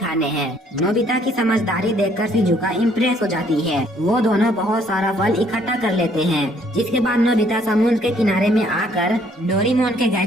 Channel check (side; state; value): both; normal; correlation 0.64